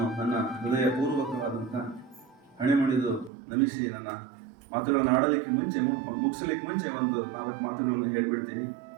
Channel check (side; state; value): left; drops out; at 3.3 s